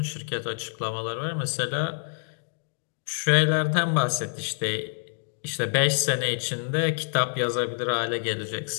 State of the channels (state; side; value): silent; right; digital silence